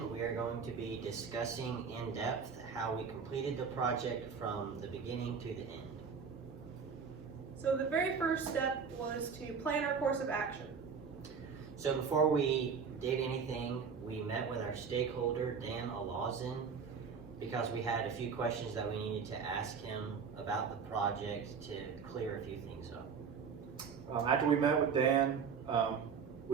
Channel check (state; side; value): quieter; left; 6.0 dB